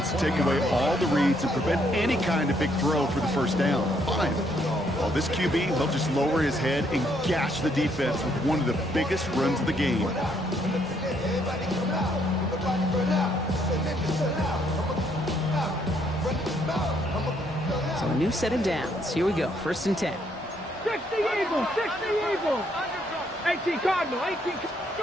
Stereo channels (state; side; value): normal; both; correlation 0.71